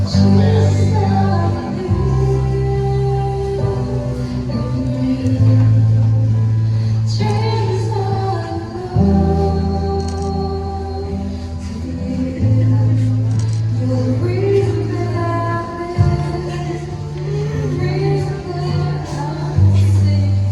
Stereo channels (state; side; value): identical; both; correlation 1.00